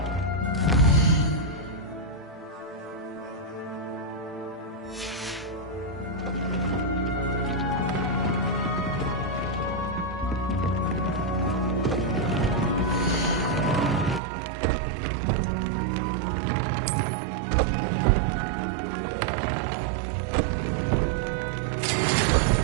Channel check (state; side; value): drops out; left; at 14.2 s